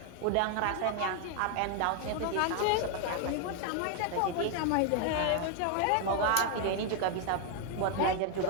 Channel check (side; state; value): both; different; correlation 0.01